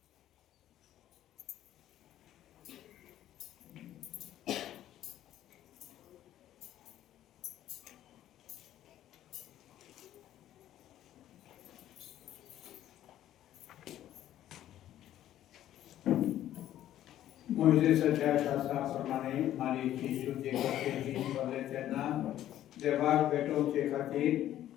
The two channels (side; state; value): right; quieter; 12.5 dB